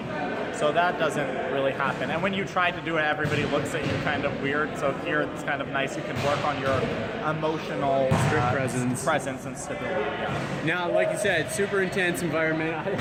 So that doesn't really happen. And when you try to do it, everybody looks at you kind of weird. So here it's kind of nice. You can work on your emotional presence and stability. Yeah. Now, like you said, super intense environment.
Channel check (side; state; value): both; identical; correlation 1.00